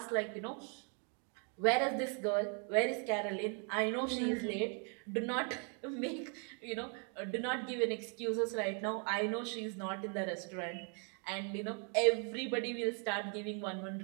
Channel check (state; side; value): quieter; left; 39.4 dB